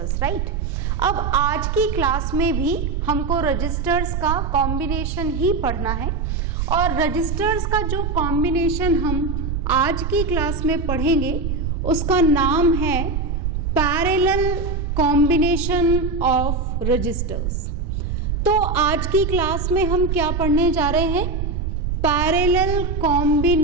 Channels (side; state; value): right; noise; rumble, 2 dB below the sound